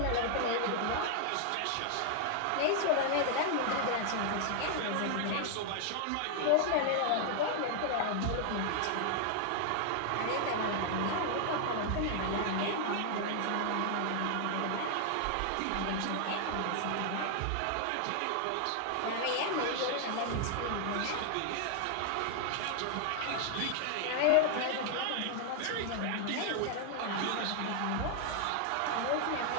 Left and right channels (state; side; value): different; both; correlation 0.00